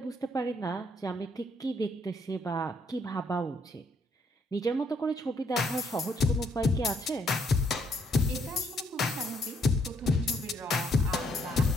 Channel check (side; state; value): both; normal; correlation 0.71